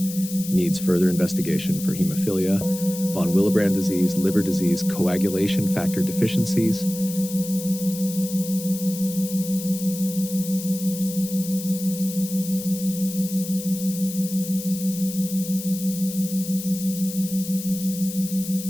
needs further investigation for hemophilia, von Willebrand disease, liver disease, coagulation factor deficiencies.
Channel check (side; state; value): left; noise; hiss, 10 dB below the sound